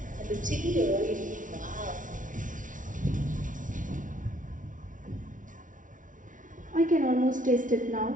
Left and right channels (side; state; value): left; late; 0.38 ms